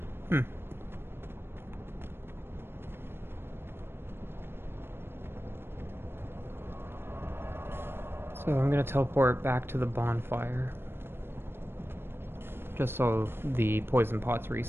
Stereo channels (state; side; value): late; left; 0.11 ms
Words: So I'm gonna teleport back to the bonfire. Just so the poison pots